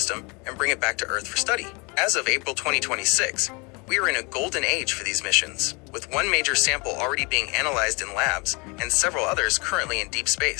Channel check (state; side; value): quieter; right; 29.6 dB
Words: and bring it back to Earth for study. As of April 2026, we are in a golden age for these missions, with one major sample already being analyzed in labs and several others currently in deep